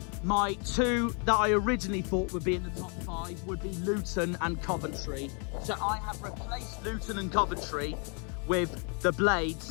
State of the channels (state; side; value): quieter; right; 37.5 dB